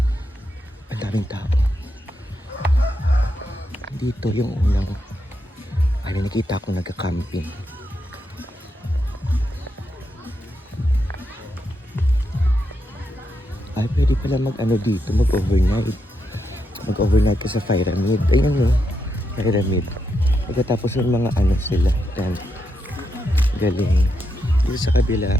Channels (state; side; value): normal; both; correlation 0.83